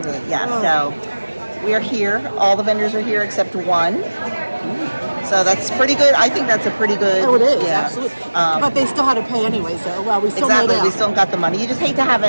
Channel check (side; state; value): both; inverted; correlation -1.00